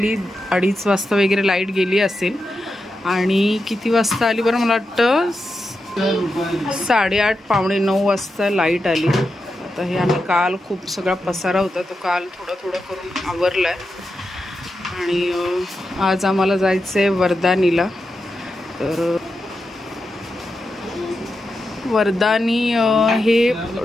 2:30 वाजता वगैरे लाईट गेली असेल. आणि किती वाजता आली बरं, मला वाटतं 8:30 पावणे 9 वाजता लाईट आली. आता हे आम्ही काल खूप सगळा पसारा होता तो काल थोडं करून आवरला आहे. आणि आज आम्हाला जायचं आहे वर्धानीला. तर वर्धानी हे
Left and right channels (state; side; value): normal; both; correlation 0.88